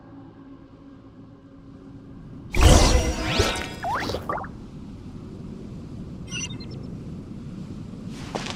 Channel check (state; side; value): identical; both; correlation 1.00